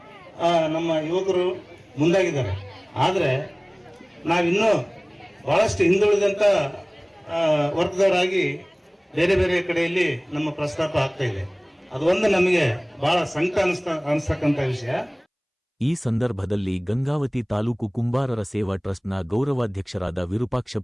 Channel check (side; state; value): both; identical; correlation 1.00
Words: ನಮ್ಮ ಯುವಕರು ಮುಂದಾಗಿದ್ದಾರೆ. ಆದ್ರೆ ನಾವಿನ್ನೂ ಬಹಳಷ್ಟು ಹಿಂದುಳಿದಂತ ವರ್ಗದವರಾಗಿ ಬೇರೆ ಬೇರೆ ಕಡೆಯಲ್ಲಿ ನಮ್ಮ ಪ್ರಸ್ತಾಪ ಆಗ್ತಾ ಇದೆ. ಅದು ಒಂದು ನಮಗೆ ಬಹಳ ಸಂಕಟ ಅನಿಸ್ತಕ್ಕಂಥ ವಿಷಯ. ಈ ಸಂದರ್ಭದಲ್ಲಿ ಗಂಗಾವತಿ ತಾಲೂಕು ಕುಂಬಾರರ ಸೇವಾ ಟ್ರಸ್ಟ್ನ ಗೌರವಾಧ್ಯಕ್ಷರಾದ